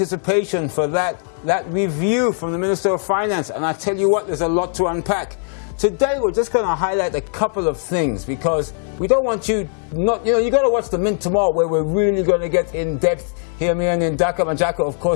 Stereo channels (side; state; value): right; silent; digital silence